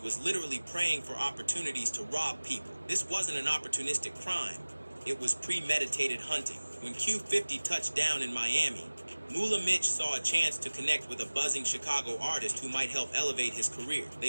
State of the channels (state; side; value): inverted; both; correlation -1.00